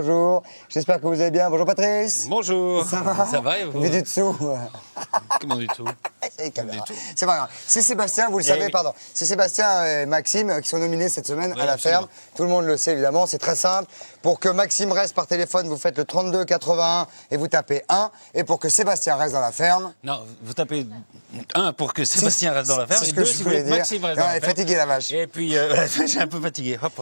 J'espère que vous allez bien. Bonjour Patrice. Bonjour. Ça va? Ça va et vous? Vu du dessous. Comment du tout? C'est pas grave. C'est Sébastien, vous le savez, oui. pardon. C'est Sébastien et Maxime qui sont nominés cette semaine à la absolument. ferme. Tout le monde le sait évidemment, c'est très simple. Pour que Maxime reste par téléphone, vous faites le 32 81 et vous tapez 1. Et pour que Sébastien reste dans la ferme... Non, vous tapez 1 pour que Sébastien reste dans la ferme c'est ce et que 2 je si vous voulais voulez que dire. Maxime reste Non, dans elle la est ferme. fatiguée la vache. Et puis, j'ai un peu fatigué. Hop,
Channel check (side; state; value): both; inverted; correlation -1.00